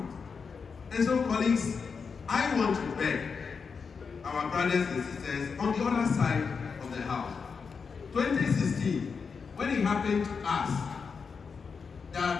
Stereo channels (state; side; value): quieter; right; 5.5 dB